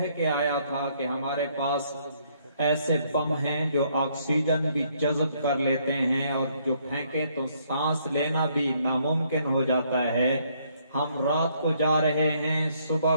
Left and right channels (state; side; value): inverted; both; correlation -0.69